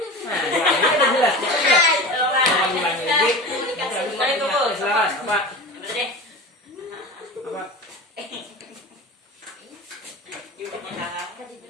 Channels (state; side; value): normal; both; correlation 0.31